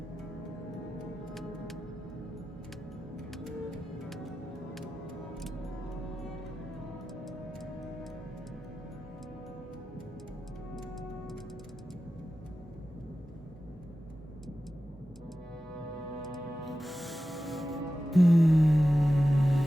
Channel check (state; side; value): normal; both; correlation 0.94